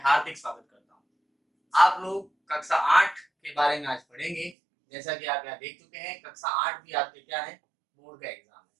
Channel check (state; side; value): drops out; left; at 4.5 s